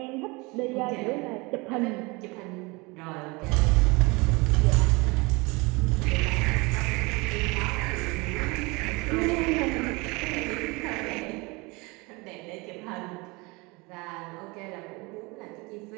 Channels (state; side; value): quieter; left; 25.8 dB